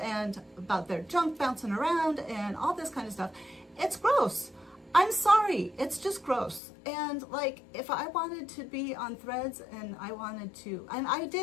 about their junk bouncing around and all this kind of stuff. It's gross. I'm sorry, it's just gross. And like, if I wanted to be on Threads and I wanted to, and I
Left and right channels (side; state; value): right; drops out; at 6.6 s